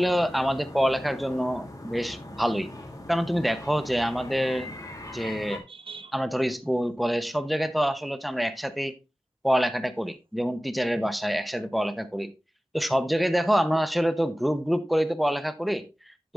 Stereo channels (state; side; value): normal; both; correlation 0.97